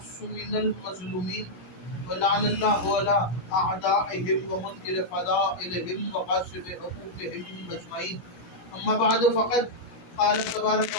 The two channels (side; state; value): right; late; 17 ms